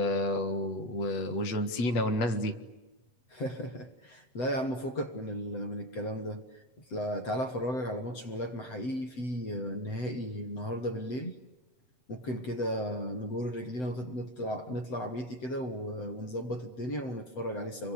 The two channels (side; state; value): right; late; 8.3 ms